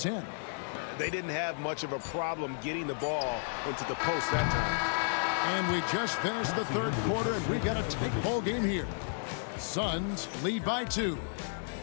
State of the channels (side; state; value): right; silent; digital silence